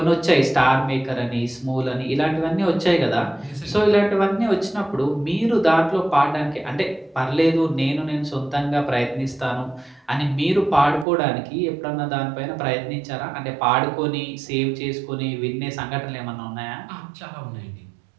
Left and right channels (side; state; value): left; drops out; at 11.1 s